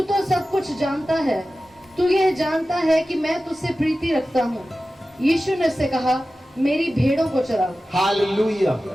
तो सब कुछ जानता है, तू यह जानता है कि मैं तुझसे प्रीति रखता हूँ। यीशु ने उससे कहा, मेरी भेड़ों को चराओ। Hallelujah,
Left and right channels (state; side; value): normal; both; correlation 0.95